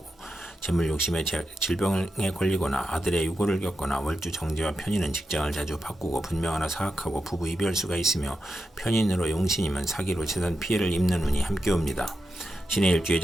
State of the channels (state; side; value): normal; both; correlation 0.88